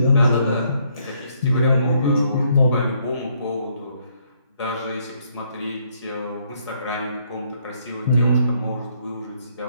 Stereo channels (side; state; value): both; inverted; correlation -0.70